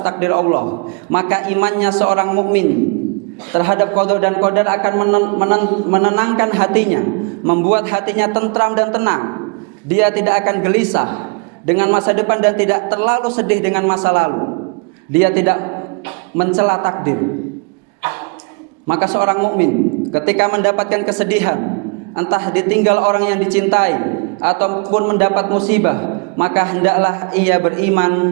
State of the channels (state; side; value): quieter; left; 34.0 dB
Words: Allah. Maka imannya seorang mukmin terhadap qada dan qadar akan menenangkan hatinya, membuat hatinya tentram dan tenang. Dia tidak akan gelisah dengan masa depan dan tidak terlalu sedih dengan masa lalu. Dia tidak mencela takdir. Maka seorang mukmin ketika mendapatkan kesedihan, entah ditinggal orang yang dicintai ataupun mendapat musibah, maka hendaklah ia beriman